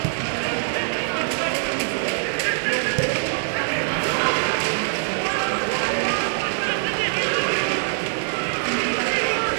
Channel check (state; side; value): silent; left; 63 dB below the other